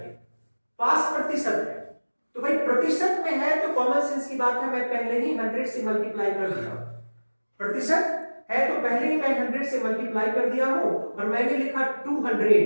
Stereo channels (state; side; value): inverted; both; correlation -1.00